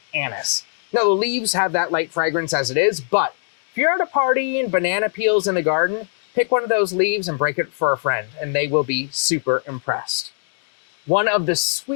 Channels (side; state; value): right; silent; digital silence